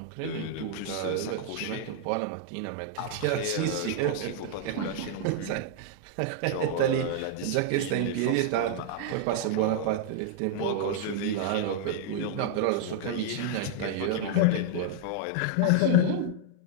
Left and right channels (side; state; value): both; different; correlation -0.01